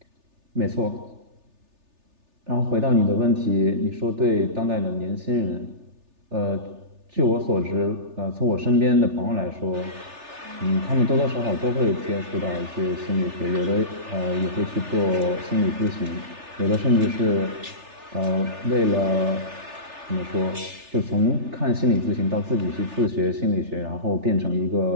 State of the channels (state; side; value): late; left; 3.3 ms